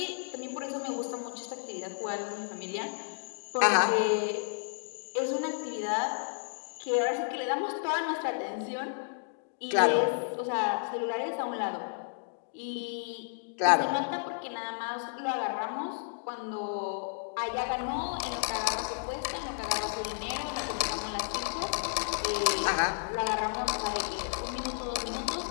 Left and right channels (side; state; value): right; silent; digital silence